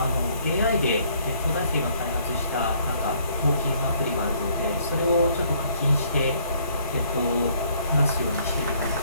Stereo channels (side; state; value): both; inverted; correlation -0.64